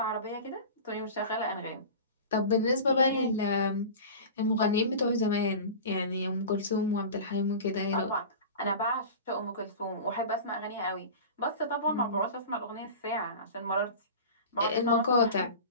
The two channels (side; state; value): both; inverted; correlation -0.34